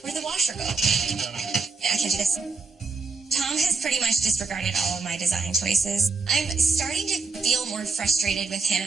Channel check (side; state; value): left; quieter; 4.4 dB